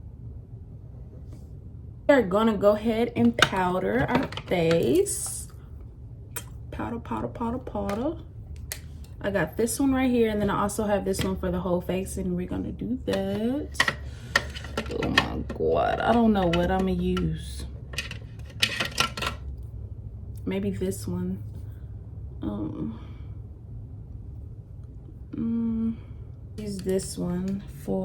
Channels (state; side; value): identical; both; correlation 1.00